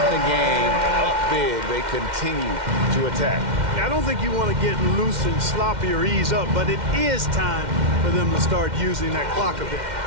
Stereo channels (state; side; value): late; left; 2.1 ms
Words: the game, up big, they continue to attack. I don't think you want to get loose and sloppy or ease up, but it is time for them to start using that clock a bit.